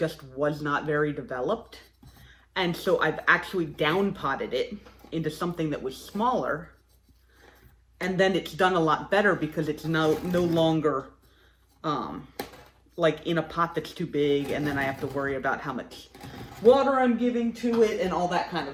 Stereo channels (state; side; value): identical; both; correlation 1.00